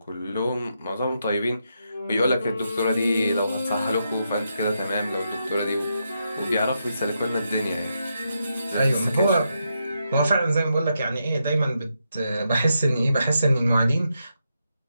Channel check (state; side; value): inverted; both; correlation -0.83